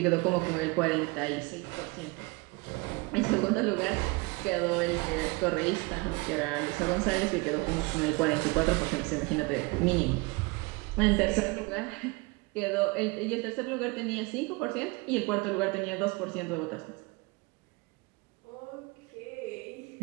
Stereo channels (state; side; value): quieter; left; 26.7 dB